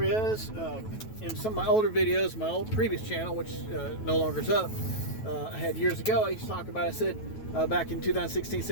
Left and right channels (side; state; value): right; late; 9.2 ms